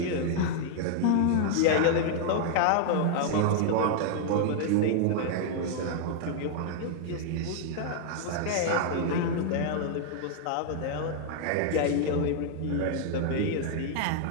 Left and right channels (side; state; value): both; different; correlation 0.00